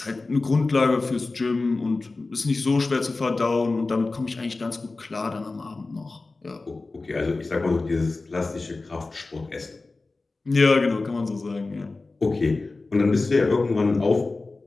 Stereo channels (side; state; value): right; quieter; 3.5 dB